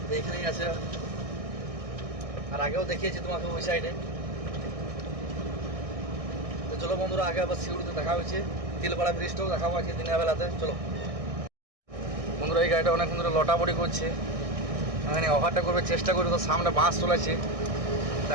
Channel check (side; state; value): left; late; 1.6 ms